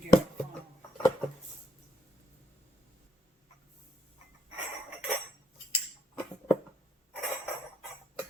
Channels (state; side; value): normal; both; correlation 0.74